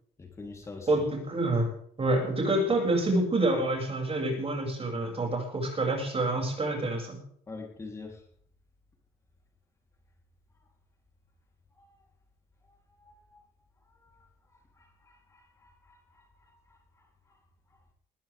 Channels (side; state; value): both; normal; correlation 0.54